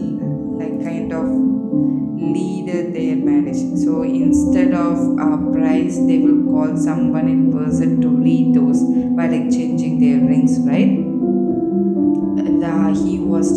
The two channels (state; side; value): identical; both; correlation 1.00